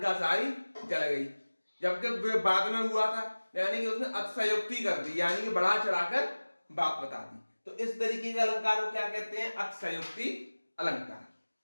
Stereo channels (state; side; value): inverted; both; correlation -1.00